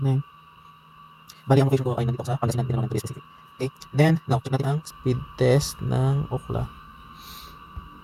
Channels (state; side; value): identical; both; correlation 1.00